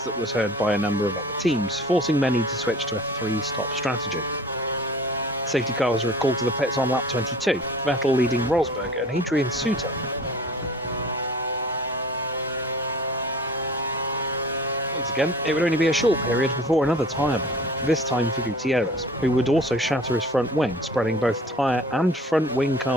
that was heard by a number of other teams, forcing many to switch to a 3-stop strategy. The safety car was recalled to the pits on lap 22, Vettel leading Rosberg and Adrian Suter. Once again, it would only be a short period before another tyre blow, this time for Gutierrez, who would also shatter his front wing, spreading both tyre and front wing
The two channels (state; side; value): normal; both; correlation 0.46